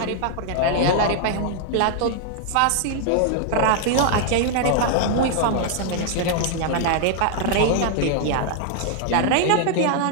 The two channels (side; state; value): both; different; correlation 0.00